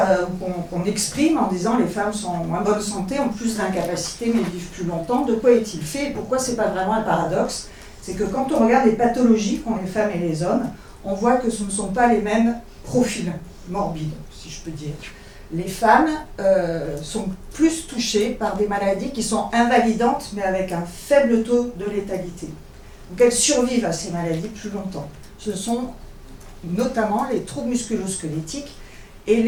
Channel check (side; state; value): both; identical; correlation 1.00